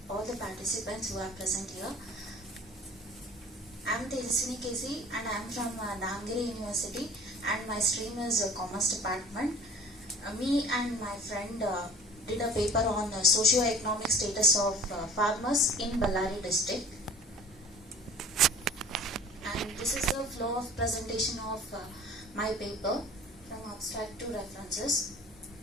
all the participants who are present here. I am Tejaswini KC and I am from Damgiri University and my stream is Commerce Department. Me and my friend did a paper on socio-economic status of farmers in Ballari district. And this is the flow of presentation of my paper from abstract to references.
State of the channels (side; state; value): both; normal; correlation 0.45